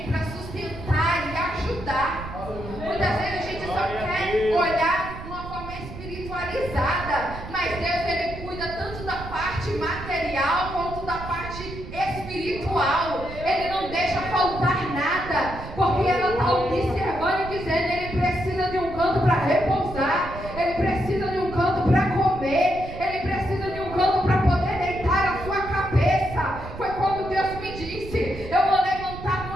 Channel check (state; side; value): noise; right; rumble, 11 dB below the sound